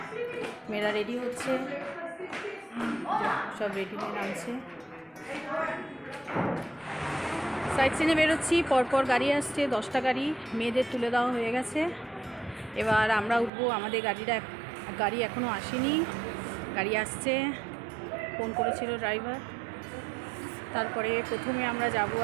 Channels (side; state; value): left; drops out; at 13.5 s